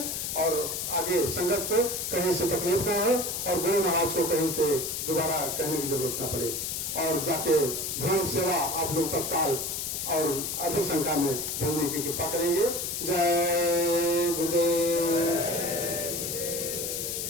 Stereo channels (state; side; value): noise; left; hiss, 3 dB below the sound